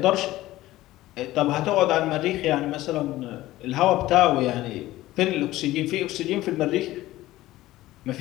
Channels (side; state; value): right; quieter; 16.4 dB